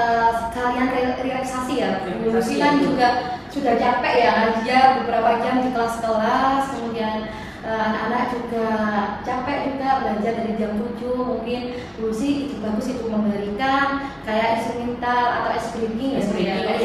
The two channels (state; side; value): identical; both; correlation 1.00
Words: sekalian relaksasi ya. Lucy kan juga sudah capek ya, dia beberapa jam di kelas-kelas, kemudian anak-anak juga capek juga belajar dari jam 7. Mungkin Lucy itu bagus itu memberikan kayak instrumental atau ice breaking ya,